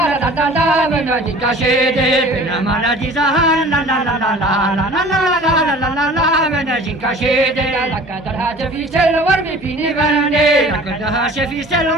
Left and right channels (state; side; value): normal; both; correlation 0.45